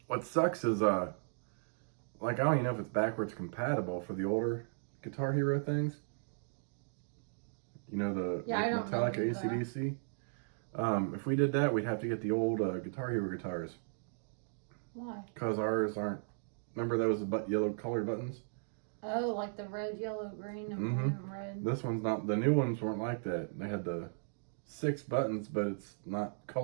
What sucks is, like, I don't even know if it's backwards compatible for the older Guitar Hero things. You know, the Metallica AC/DC. If we did that, we'd have to get the old Guitar Hero guitars. Why? Because ours aren't. Remember those yellow colored buttons? Oh, like the red, yellow, green, and blue and red. This one's not. The new ones weren't like that. They had the 6 buttons, but it's not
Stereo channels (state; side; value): silent; left; digital silence